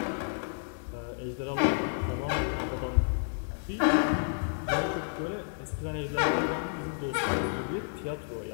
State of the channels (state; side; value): silent; right; 57 dB below the other